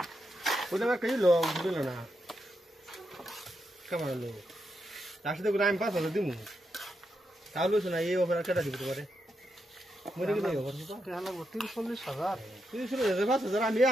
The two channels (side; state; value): both; normal; correlation 0.84